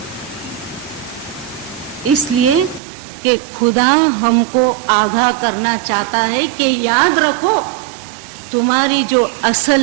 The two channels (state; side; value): drops out; left; at 2.8 s